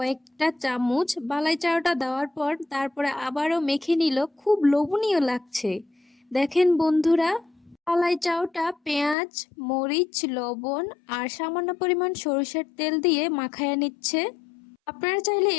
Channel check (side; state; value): right; drops out; at 9.2 s